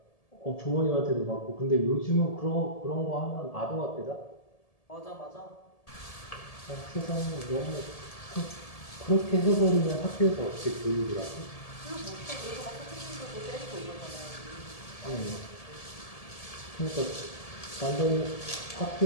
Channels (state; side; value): late; right; 1.7 ms